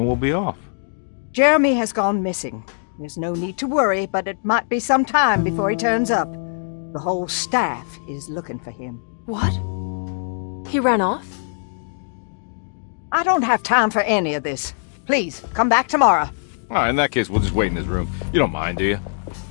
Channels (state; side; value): silent; right; digital silence